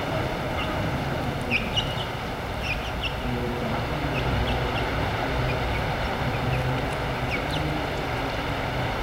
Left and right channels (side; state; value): both; identical; correlation 1.00